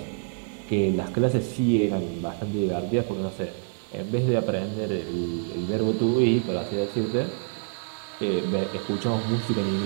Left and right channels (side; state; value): left; silent; 60 dB below the other